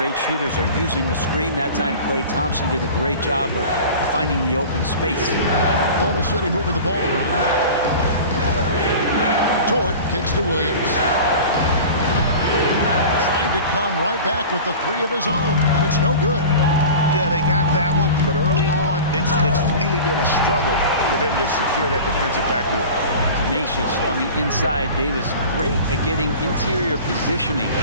shooters are using the screen. That time, Klay Thompson did a great job of finding the open space. Oklahoma City moving the ball around. Dort kicks to Williams. Trying to come right back with the 3 of his own. But it's no good. Yeah, they got that one, but early on, it's really been a struggle for them to secure that defensive backboard. Tenacious on the inside. Davis great at getting interior positioning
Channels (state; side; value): inverted; both; correlation -0.37